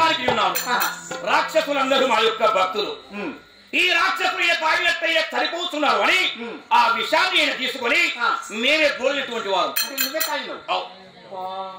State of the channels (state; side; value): identical; both; correlation 1.00